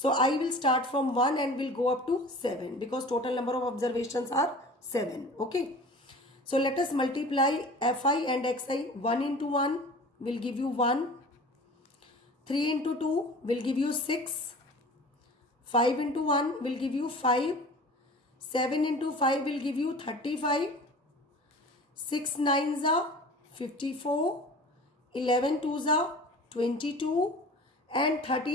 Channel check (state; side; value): normal; both; correlation 0.41